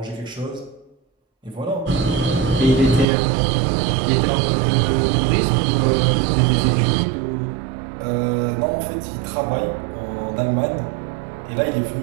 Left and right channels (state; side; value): drops out; left; at 3.1 s